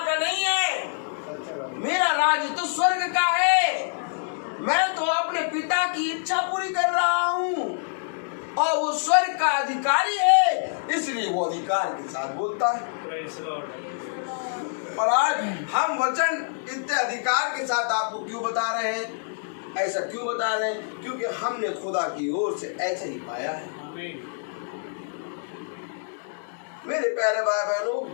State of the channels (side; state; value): right; silent; digital silence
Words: का नहीं है, मेरा राज्य तो स्वर्ग का है। मैं तो अपने पिता की इच्छा पूरी कर रहा हूँ, और वो स्वर्ग का अधिकारी है, इसलिए वो अधिकार के साथ बोलता है। और आज हम वचन इतने अधिकार के साथ आपको क्यों बता रहे हैं? ऐसा क्यों बता रहे हैं? क्योंकि हमने खुदा की ओर से ऐसे ही पाया है। मेरे प्यारे भाई बहनों,